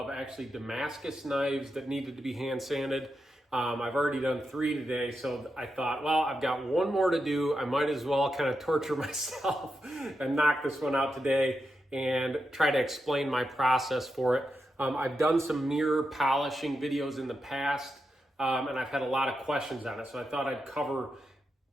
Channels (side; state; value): both; normal; correlation 0.87